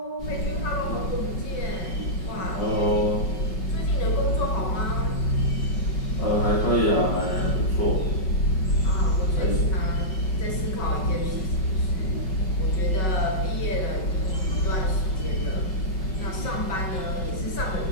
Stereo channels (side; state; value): right; late; 5.4 ms